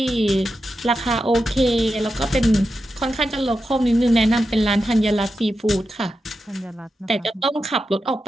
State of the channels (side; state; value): both; normal; correlation 0.89